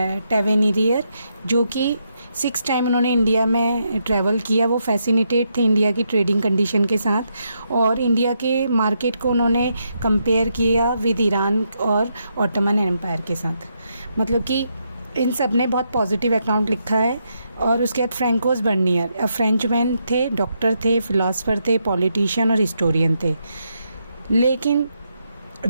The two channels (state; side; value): inverted; both; correlation -0.80